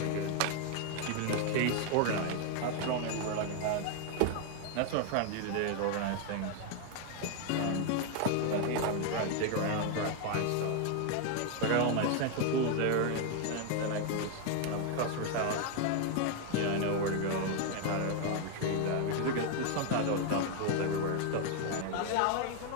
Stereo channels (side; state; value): both; different; correlation 0.00